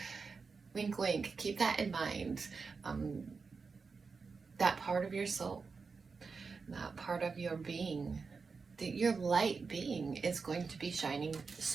wink, wink, keep that in mind. That part of your soul, that part of your being, your light being is going to be shining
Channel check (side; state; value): left; quieter; 4.9 dB